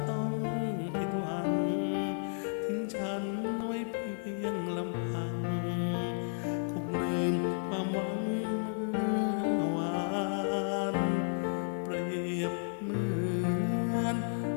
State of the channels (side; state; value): right; silent; digital silence